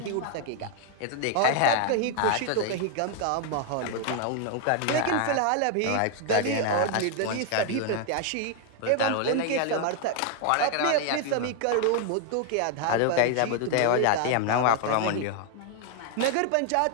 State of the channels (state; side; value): different; both; correlation 0.00